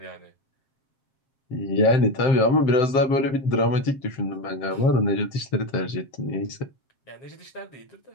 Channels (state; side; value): late; right; 7.5 ms